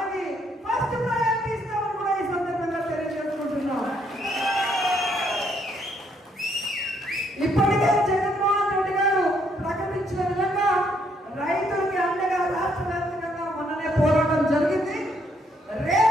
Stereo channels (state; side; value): normal; both; correlation 0.71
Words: ఫస్ట్ ప్రయారిటీ ఇస్తామని కూడా ఈ సందర్భంగా తెలియజేసుకుంటున్నాం. ఇప్పటికే జగన్మోహన్ రెడ్డి గారు ప్రకటించిన విధంగా రైతులకి అండగా రాష్ట్ర వ్యాప్తంగా మొన్ననే పోరాటం జరిగింది.